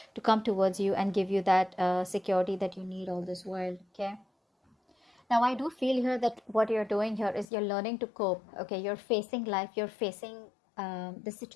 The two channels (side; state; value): right; drops out; at 7.5 s